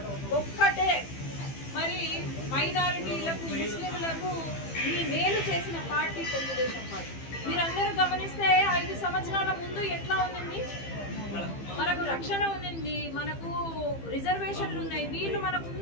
ఒక్కటే మరి మైనారిటీలకు ముస్లింలకు ఈ మేలు చేసిన పార్టీ తెలుగుదేశం పార్టీ. మీరందరూ గమనిస్తే 5 సంవత్సరాల ముందు ఎట్లా ఉంది, మనకు రక్షణ ఉంది, మనకు రిజర్వేషన్లు ఉన్నాయి. వీళ్ళు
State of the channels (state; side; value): late; right; 15 ms